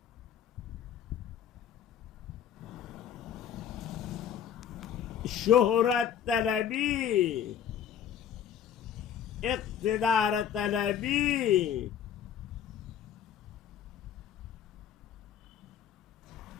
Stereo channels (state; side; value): quieter; right; 9.2 dB